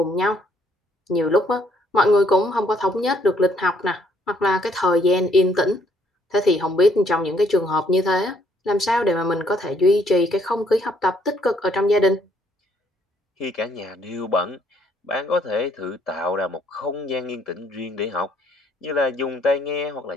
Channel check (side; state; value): both; normal; correlation 0.67